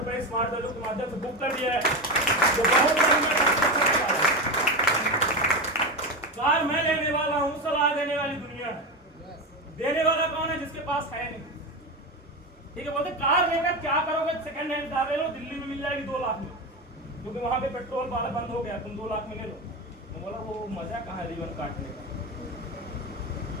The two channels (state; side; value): normal; both; correlation 0.17